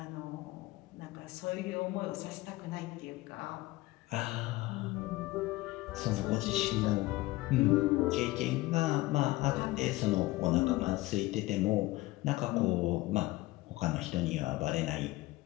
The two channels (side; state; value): right; quieter; 19.3 dB